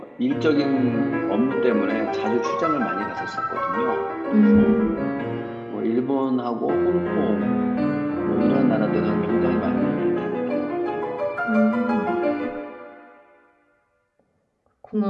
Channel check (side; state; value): both; identical; correlation 1.00